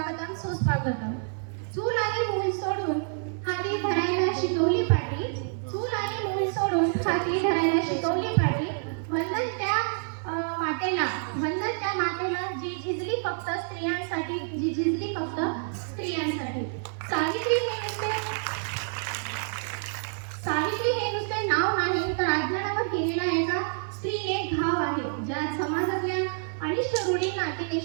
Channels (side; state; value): left; silent; 57 dB below the other